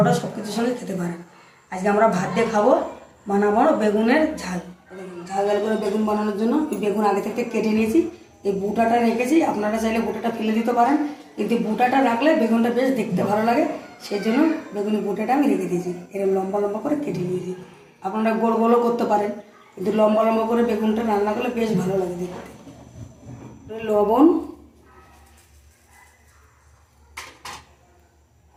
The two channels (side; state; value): both; identical; correlation 1.00